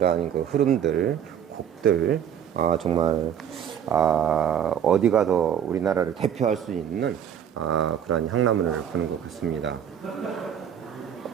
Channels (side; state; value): left; quieter; 9.0 dB